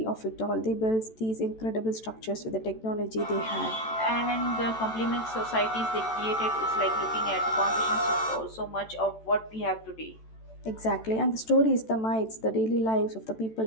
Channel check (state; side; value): late; right; 14 ms